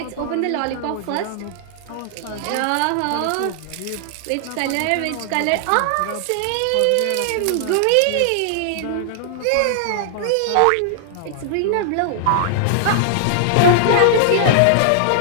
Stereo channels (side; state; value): both; different; correlation -0.01